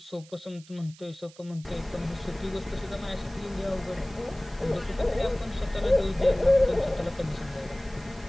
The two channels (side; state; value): right; noise; hiss, 23 dB below the sound